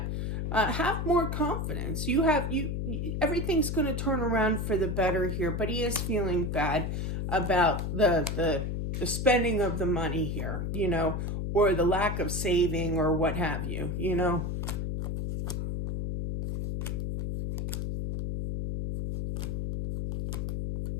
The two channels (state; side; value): noise; left; hum, 2 dB below the sound